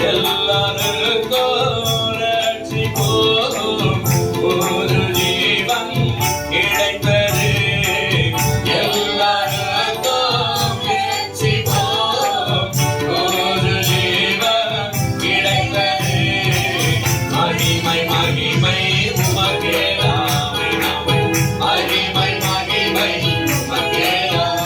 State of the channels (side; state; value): both; identical; correlation 1.00